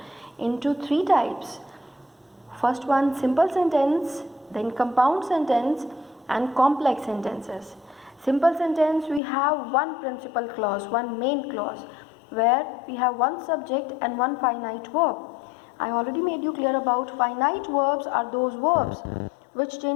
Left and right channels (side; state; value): right; drops out; at 9.2 s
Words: into three types. First one, simple sentence, then compound sentence, and complex sentences. Simple sentence, we have one principal clause, one main clause, where we have one subject and one finite verb. I already made you clear about finite verbs are those verbs which